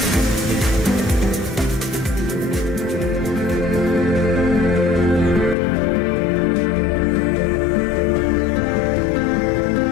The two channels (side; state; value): right; drops out; at 5.6 s